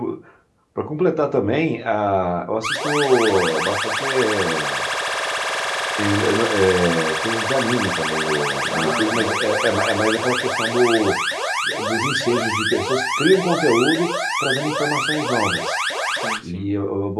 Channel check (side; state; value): both; identical; correlation 1.00